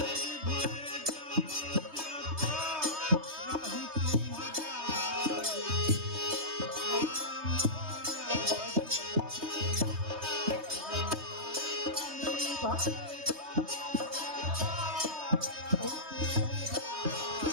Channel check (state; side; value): late; left; 3.2 ms